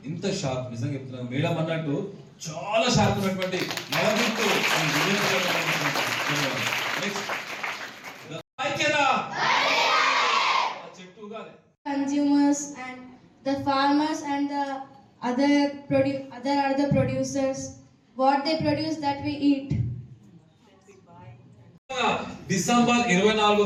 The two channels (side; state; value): both; identical; correlation 1.00